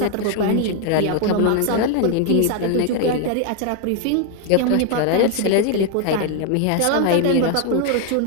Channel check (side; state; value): both; different; correlation 0.00